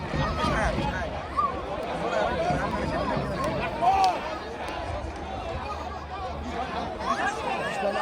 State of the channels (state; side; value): identical; both; correlation 1.00